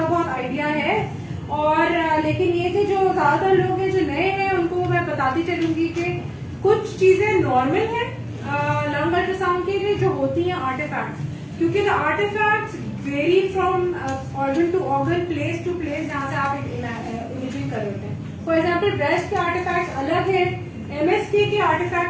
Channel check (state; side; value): identical; both; correlation 1.00